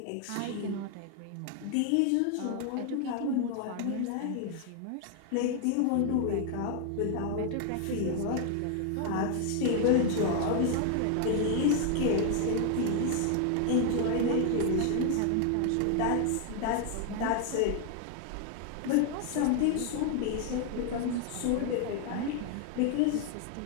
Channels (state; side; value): different; both; correlation 0.00